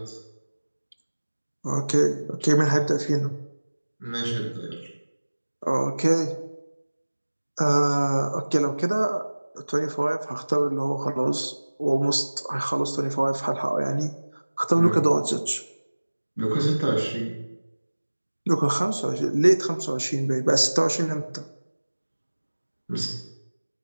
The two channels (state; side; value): inverted; both; correlation -1.00